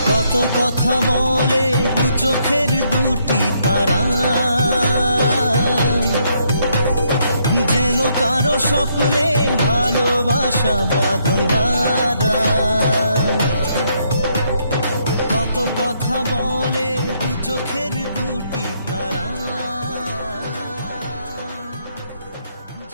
কত কথা বলে দু চোখের দুটি তারা, যেন কারো স্বপ্নে ভালোবাসা বাঁধন হারা। কত কথা বলে দু চোখের দুটি তারা,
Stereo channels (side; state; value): both; inverted; correlation -0.73